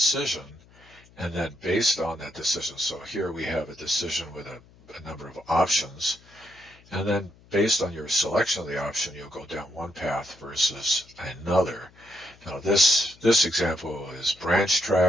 and then based on that decision, so here we have a decision with a number of options, and then based on your selection of the option, you'll go down one path versus another. Now this example is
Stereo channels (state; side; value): noise; left; hum, 27 dB below the sound